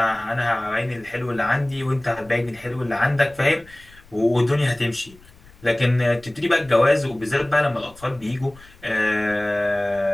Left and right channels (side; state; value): left; noise; rumble, 25 dB below the sound